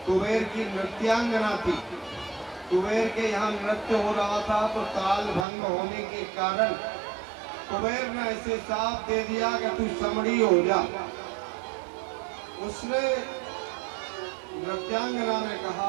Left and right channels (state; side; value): drops out; left; at 5.5 s